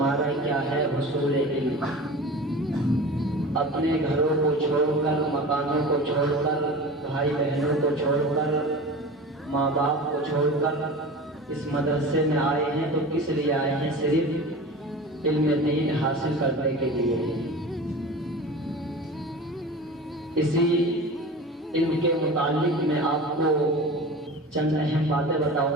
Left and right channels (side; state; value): both; normal; correlation 0.34